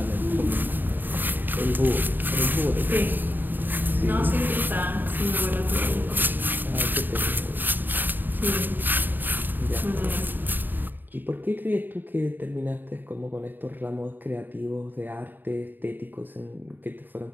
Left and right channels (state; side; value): late; left; 0.091 ms